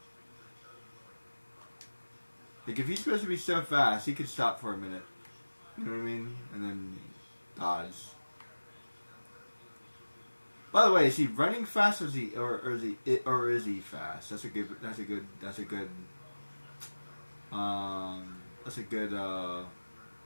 Like, if he's supposed to be so fast, he could stop for a minute. You know what I mean? And then dodge. By the way, is he running fast, or is he fast? That's a good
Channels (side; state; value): both; inverted; correlation -1.00